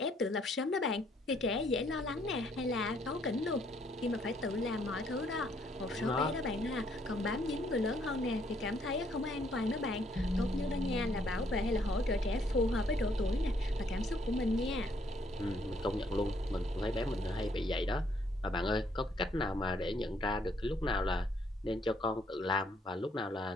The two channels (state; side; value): normal; both; correlation 0.68